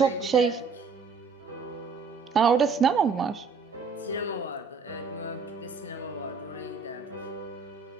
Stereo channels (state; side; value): quieter; left; 5.1 dB